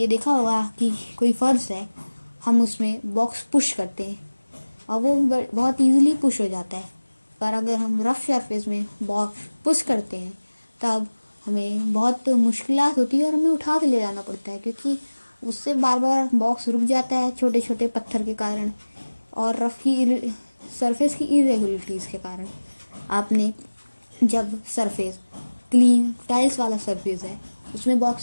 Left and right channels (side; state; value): both; inverted; correlation -1.00